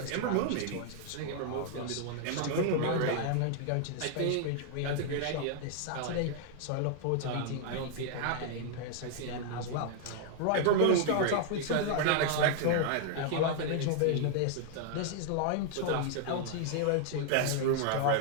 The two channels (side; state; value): both; different; correlation 0.00